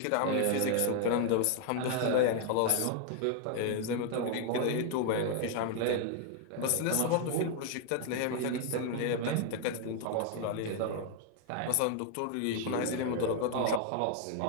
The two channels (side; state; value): both; different; correlation 0.00